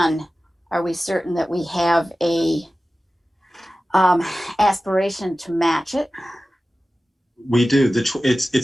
are we certain that we have a aspiration to match it? We do.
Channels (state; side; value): normal; both; correlation 0.95